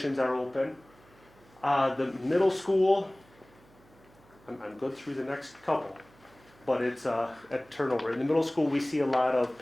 are open. The middle school, I'm good through the next couple, but it's at turnover. In the middle school, we see a lot of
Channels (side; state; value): right; noise; hum, 28 dB below the sound